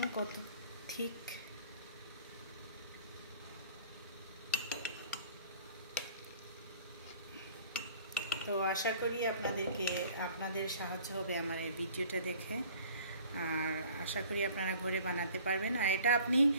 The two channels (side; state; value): both; inverted; correlation -0.50